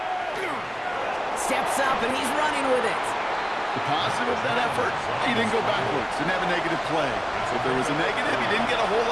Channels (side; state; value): both; identical; correlation 1.00